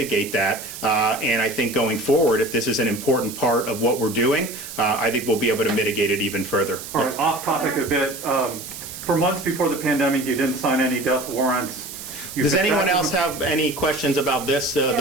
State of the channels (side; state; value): right; noise; hiss, 11 dB below the sound